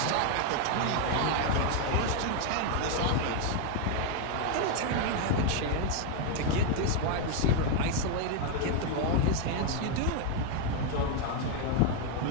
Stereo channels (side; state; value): both; different; correlation 0.01